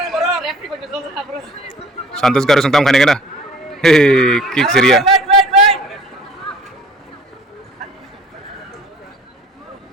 Santos garu sungtam khane kena kick seria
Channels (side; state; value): both; normal; correlation 0.50